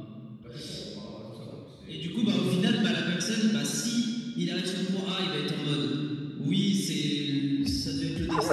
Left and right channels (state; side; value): identical; both; correlation 1.00